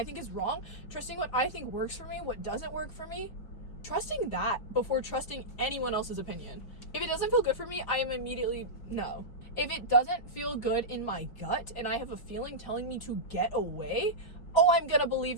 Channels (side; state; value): right; late; 5.1 ms